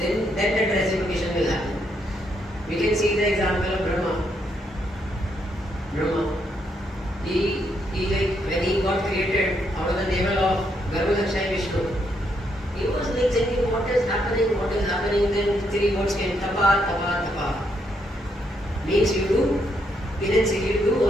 that reciprocation will happen. We can see the example of Brahma. Brahma. He like when he got created out of the navel of Garbhodakshaya Vishnu, he was like thinking what is happening, then 3 words came, tapa, tapa, tapa. Means you do penance, you do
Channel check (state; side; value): normal; both; correlation 0.76